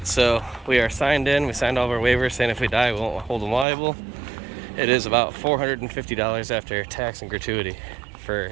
so we are signed in. We signed all of our waivers saying if we die, we won't hold them liable. It is about $450 after tax and gratuity for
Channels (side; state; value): left; drops out; at 3.7 s